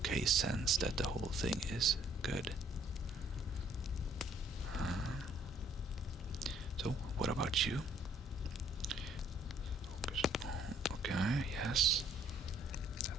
sense that the whole thing is good. So, what about you? Focus on, okay, yes.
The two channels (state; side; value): normal; both; correlation 0.63